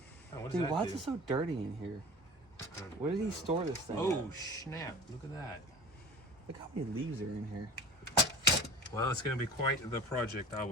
what does Dude, that why do? is it so dirty in here? Where did he store this thing Oh, at? snap. Look at that. Look how many leaves are in here. Well, it's going to be quite the project, I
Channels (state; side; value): normal; both; correlation 0.38